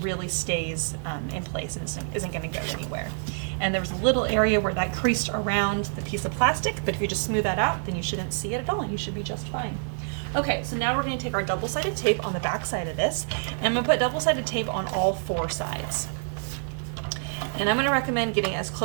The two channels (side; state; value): left; silent; 60 dB below the other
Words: really stays in place and isn't going to go anywhere. And there was a little area where that creased around the piece of plastic, but if you just smooth that out, then you shouldn't see it at all, and you should be just fine. Okay, so now we're going to take our double-sided tape on the back side of this, and I'm going to put double-sided tape on all 4 sides. And I'm going to recommend getting as